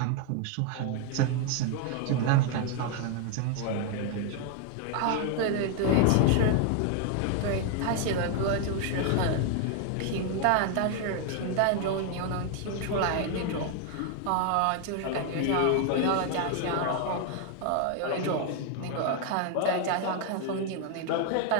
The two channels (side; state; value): both; different; correlation 0.00